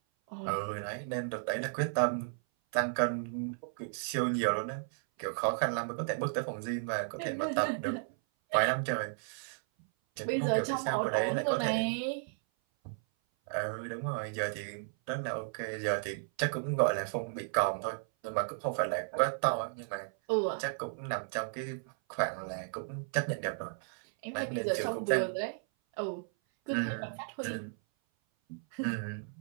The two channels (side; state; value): left; silent; 55 dB below the other